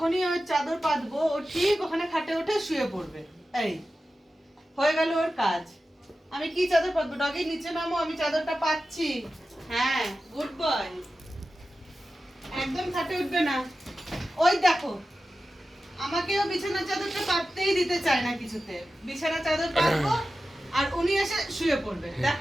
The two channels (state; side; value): normal; both; correlation 0.93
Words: ওর চাদর পাতবো ও ঠিক ওখানে খাটে উঠে শুয়ে পড়বে। এই হয়ে গেল ওর কাজ। আমি কি চাদর পাতবো? ডগি নিচে নামো, আমি চাদরটা পাচ্ছি। হ্যাঁ, গুড বয়। একদম খাটে উঠবে না। ওই দেখো, আমাকেও বিছানা চাদরটা পাততেই দিতে চায় না কিছুতে। বিছানা চাদর পাতবো আর উনি এসে শুয়ে পড়বে।